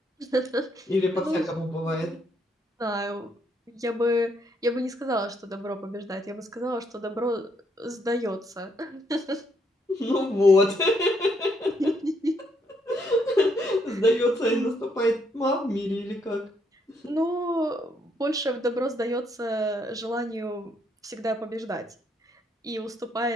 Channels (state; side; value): normal; both; correlation 0.73